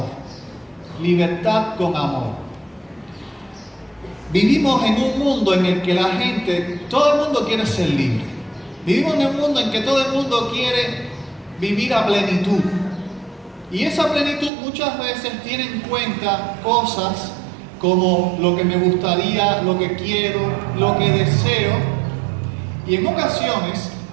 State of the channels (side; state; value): left; drops out; at 14.5 s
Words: Libertad con amor. Vivimos en un mundo en el que la gente, todo el mundo quiere ser libre. Vivimos en un mundo en que todo el mundo quiere vivir a plenitud. Y esa plenitud muchas veces tiene en cuenta cosas como lo que me gustaría, lo que quiero, lo que deseo. Y en ocasiones